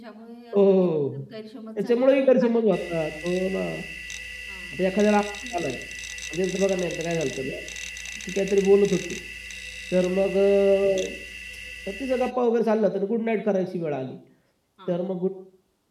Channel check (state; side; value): identical; both; correlation 1.00